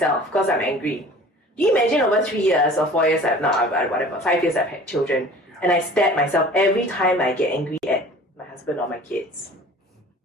because I'm angry. Do you imagine over 3 years or 4 years, 5 years I've had children, And I stab myself every time I get angry at my husband or my kids.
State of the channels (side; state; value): both; normal; correlation 0.45